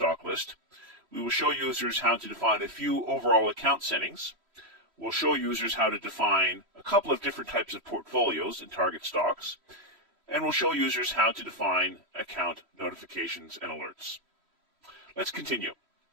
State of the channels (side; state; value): left; late; 3.1 ms